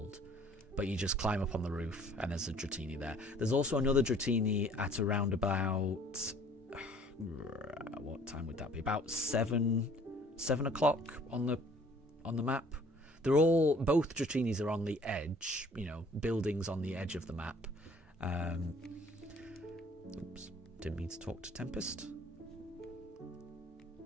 but you just climb up on the roof and there's a Dratini there. There's also another Dratini at around about what time would that be? About 7 o'clock on the map. They're all, both Dratinis are on the edge, buildings on the edge of the map. Oops, didn't mean to talk to Tempest.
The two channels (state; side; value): normal; both; correlation 0.55